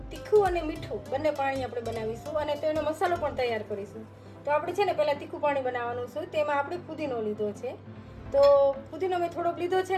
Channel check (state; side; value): identical; both; correlation 1.00